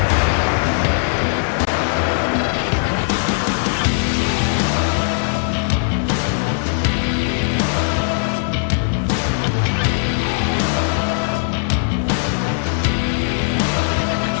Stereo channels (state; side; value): silent; right; digital silence